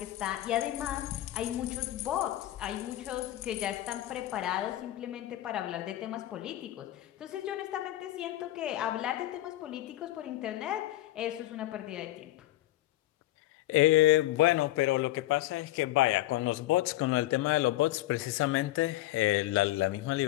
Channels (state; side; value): quieter; right; 15.7 dB